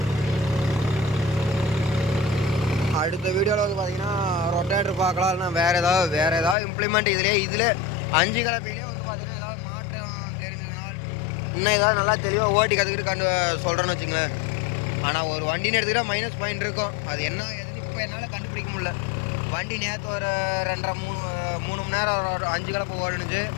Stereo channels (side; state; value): right; drops out; at 6.6 s